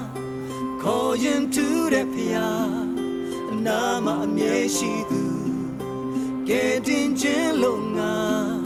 ခေါ်ရင်ထူးတဲ့ဖျားအနာမအမြဲရှိသူကဲတင်ခြင်းလုံးငါ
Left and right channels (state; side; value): identical; both; correlation 1.00